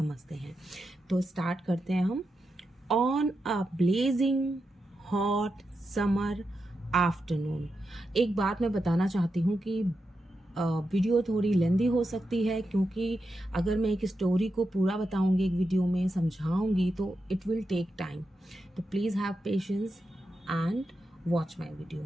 हैं। तो स्टार्ट करते हैं हम। On a blazing hot summer afternoon. एक बात मैं बताना चाहती हूँ कि वीडियो थोड़ी लेंदी हो सकती है, क्योंकि अगर मैं एक स्टोरी को पूरा बताऊंगी, एक वीडियो में समझाऊंगी, तो इट विल टेक टाइम। तो please have patience and watch my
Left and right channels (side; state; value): both; normal; correlation 0.87